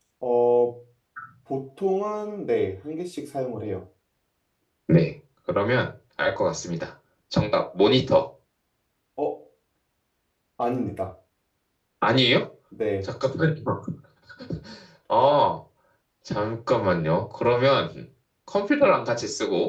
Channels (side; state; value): both; identical; correlation 1.00